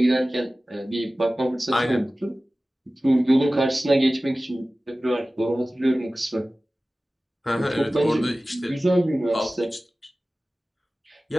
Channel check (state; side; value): normal; both; correlation 0.97